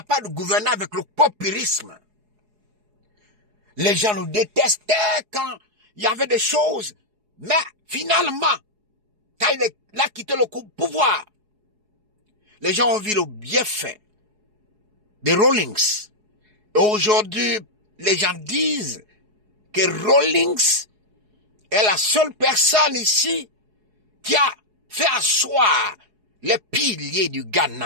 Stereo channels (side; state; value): left; late; 4.8 ms